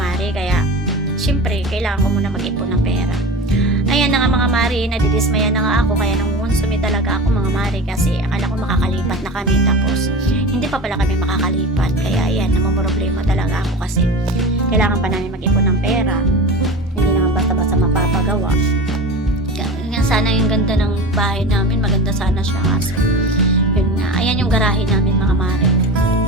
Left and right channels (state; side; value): normal; both; correlation 0.31